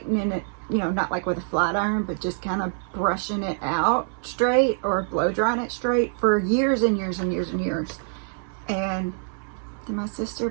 it, you know, not like with a flat iron, but just kind of brushing it out straight or blow drying it straight for years and years and years and years. And then my sister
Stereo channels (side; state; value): left; silent; 62 dB below the other